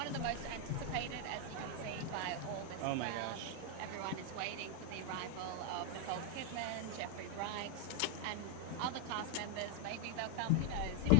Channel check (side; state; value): both; different; correlation 0.00